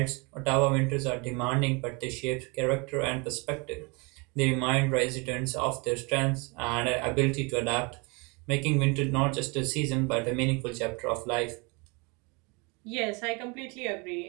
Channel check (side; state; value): left; quieter; 30.0 dB